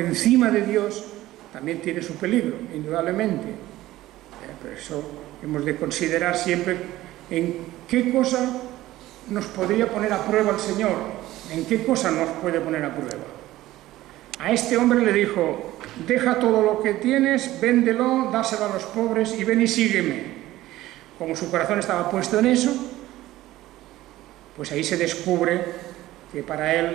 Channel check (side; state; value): left; quieter; 16.0 dB